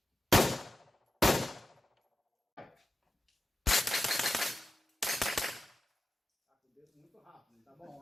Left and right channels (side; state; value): both; normal; correlation 0.92